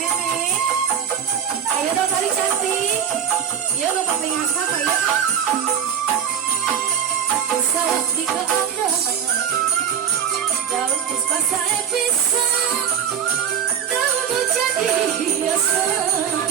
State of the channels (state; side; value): quieter; left; 8.1 dB